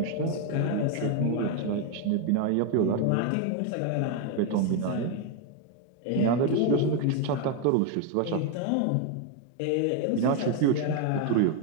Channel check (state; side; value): different; both; correlation 0.01